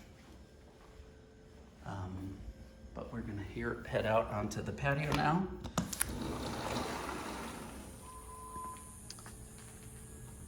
But we're gonna head out onto the patio now.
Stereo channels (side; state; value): both; identical; correlation 1.00